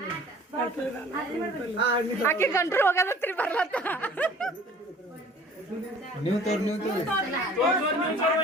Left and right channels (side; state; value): both; normal; correlation 0.50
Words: ಆಕೆ ಗಂಟ್ರು ಹೋಗದತ್ರಿ ಬರ್ಲತ್ತ ನೀವು